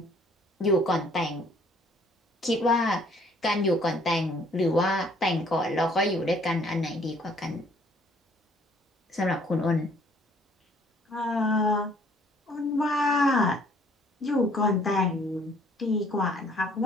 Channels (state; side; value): normal; both; correlation 0.60